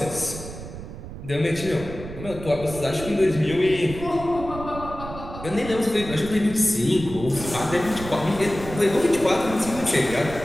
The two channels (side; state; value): right; noise; rumble, 11 dB below the sound